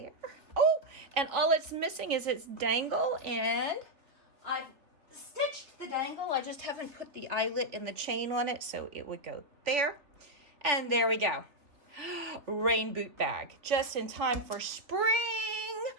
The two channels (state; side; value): late; left; 3.3 ms